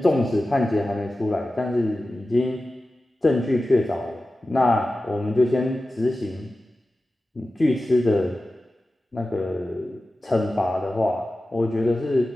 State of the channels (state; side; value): normal; both; correlation 0.94